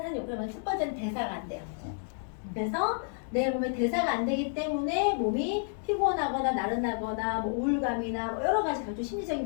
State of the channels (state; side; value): silent; right; digital silence